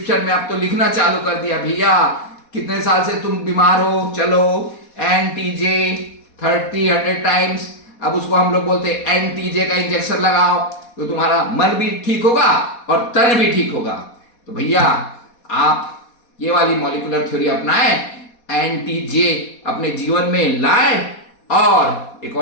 में अब तो लिखना चालू कर दिया, भैया कितने साल से तुम बीमार हो, चलो एनटीजे 30-100 टाइम्स। अब उसको हम लोग बोलते हैं एनटीजे का इंजेक्शन लगाओ, तो तुम्हारा मन भी ठीक होगा और तन भी ठीक होगा। तो भैया आप ये वाली मॉलिक्यूलर थ्योरी अपनाएं, एनटीजे अपने जीवन में लाएं। और एक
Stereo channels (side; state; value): right; late; 4.2 ms